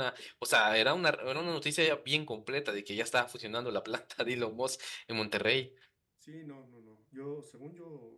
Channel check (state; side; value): identical; both; correlation 1.00